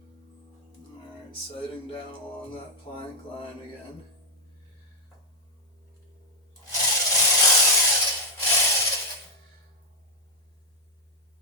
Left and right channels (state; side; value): normal; both; correlation 0.00